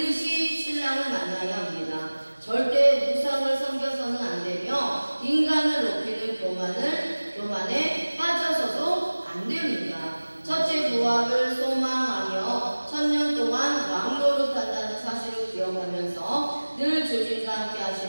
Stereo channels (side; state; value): both; inverted; correlation -1.00